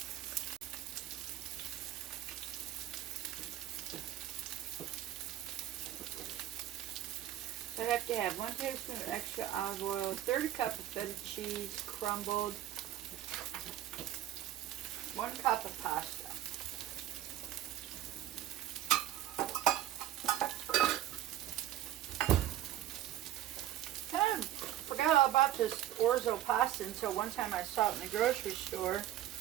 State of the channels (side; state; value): left; quieter; 12.5 dB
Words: I have to have 1 tablespoon of extra olive oil, 1/3 cup of feta cheese, crumbled, 1 cup of pasta. Kind of forgot all about this orzo pasta until one time I saw it in the grocery store.